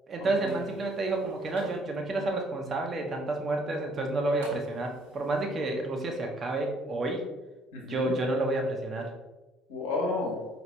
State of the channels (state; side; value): normal; both; correlation 0.63